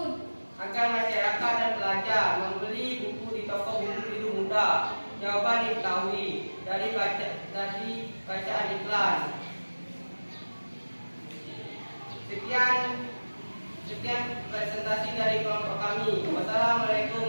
Agar masyarakat dan pelajar membeli buku di toko buku biru muda. Jawaban diketahui dari bacaan iklan. Sekian presentasi dari kelompok kami.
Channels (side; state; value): both; inverted; correlation -1.00